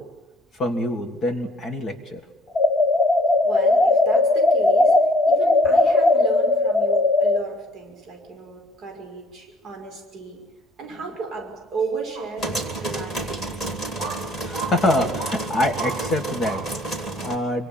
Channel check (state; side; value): normal; both; correlation 0.59